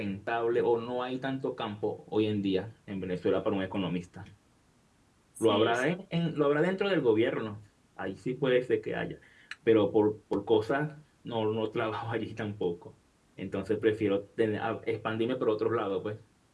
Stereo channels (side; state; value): both; identical; correlation 1.00